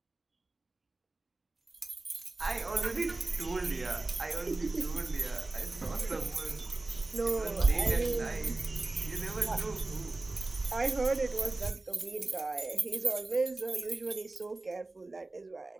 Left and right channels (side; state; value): left; quieter; 3.2 dB